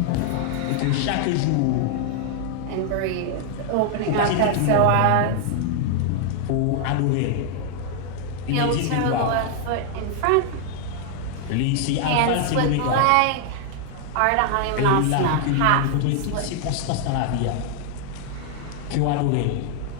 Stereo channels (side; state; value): both; different; correlation 0.00